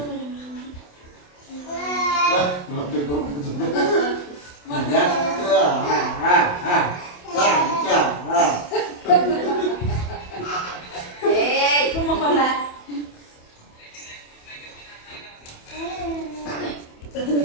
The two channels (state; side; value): late; right; 28 ms